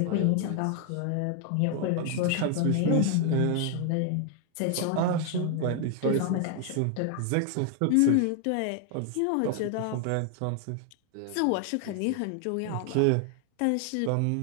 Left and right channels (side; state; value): both; different; correlation 0.00